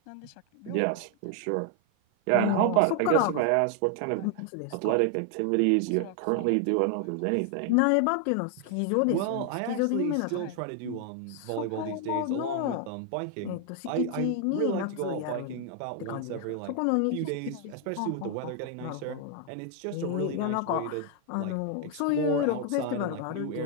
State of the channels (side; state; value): both; different; correlation 0.00